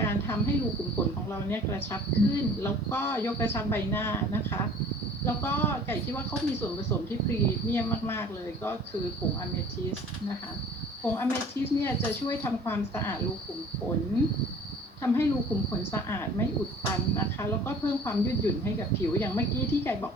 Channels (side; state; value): both; normal; correlation 0.49